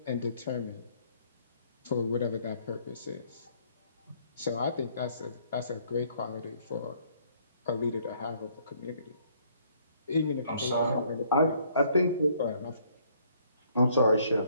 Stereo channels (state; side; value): inverted; both; correlation -0.64